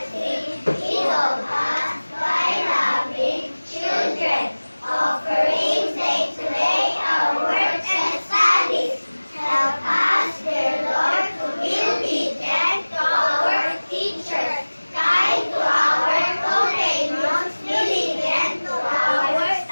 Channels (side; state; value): both; inverted; correlation -1.00